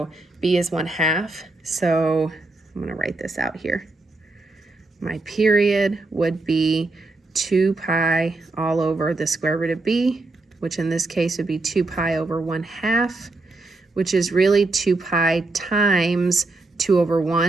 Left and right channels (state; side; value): quieter; left; 3.2 dB